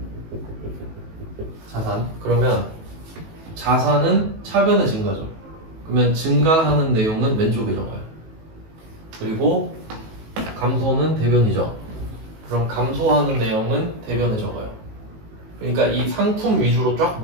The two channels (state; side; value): late; left; 19 ms